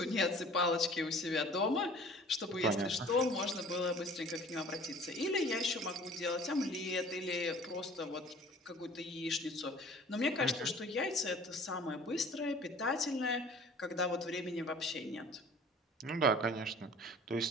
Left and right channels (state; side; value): normal; both; correlation 0.48